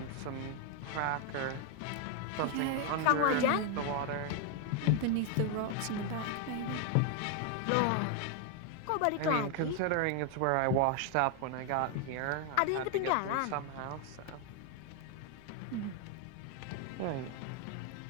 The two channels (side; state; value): both; different; correlation 0.01